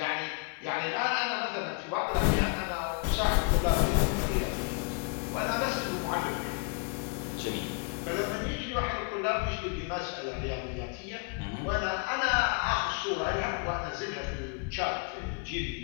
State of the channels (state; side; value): quieter; right; 34.5 dB